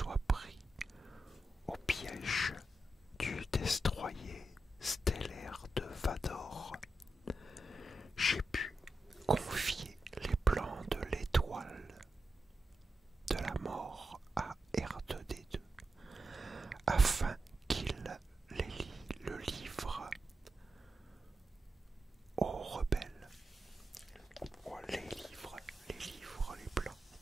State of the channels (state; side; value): normal; both; correlation 0.89